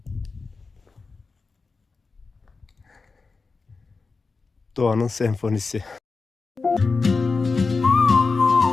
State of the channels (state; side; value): quieter; right; 4.3 dB